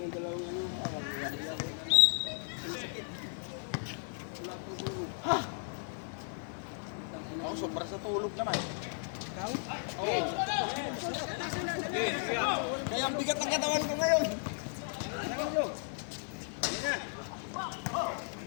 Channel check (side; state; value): right; silent; 54 dB below the other